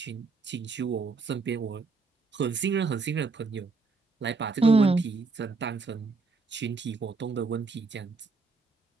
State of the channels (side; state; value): left; quieter; 4.2 dB